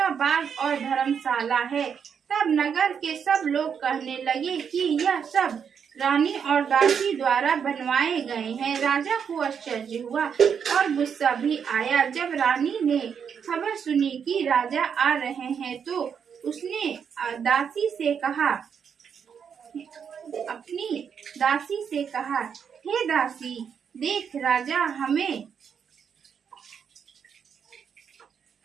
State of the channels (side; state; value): left; quieter; 7.2 dB